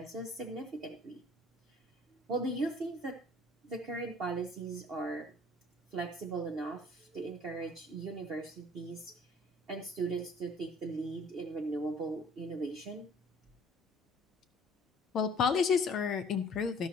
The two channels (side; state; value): both; normal; correlation 0.53